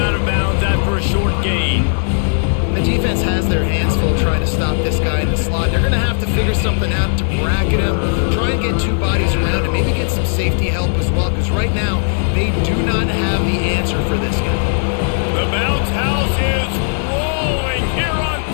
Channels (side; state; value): right; silent; digital silence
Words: of bounds after a short gain. The defense has their hands full trying to stop this guy in the slot. They're going to have to figure something out to bracket him, try and get 2 bodies around him, maybe get some safety help as well, because right now they do not have the answer for this guy. The bounce house is rolling here on